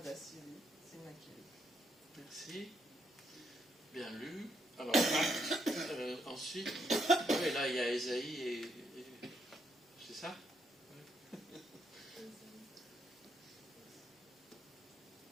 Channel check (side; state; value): both; normal; correlation 0.76